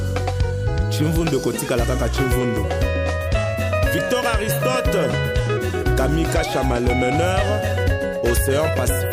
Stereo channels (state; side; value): identical; both; correlation 1.00